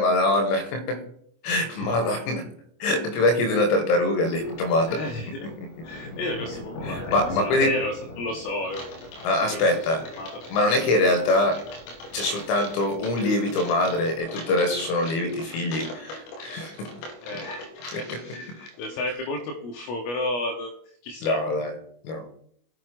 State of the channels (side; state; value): right; late; 25 ms